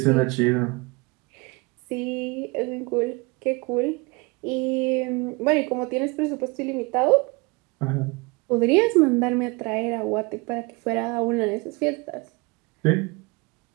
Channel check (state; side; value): quieter; left; 27.3 dB